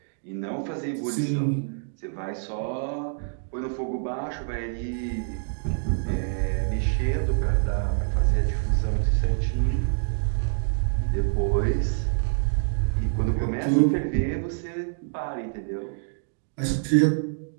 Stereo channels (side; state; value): left; silent; digital silence